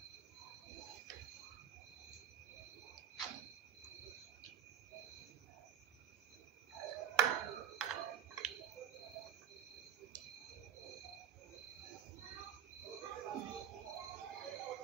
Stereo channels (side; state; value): left; quieter; 9.8 dB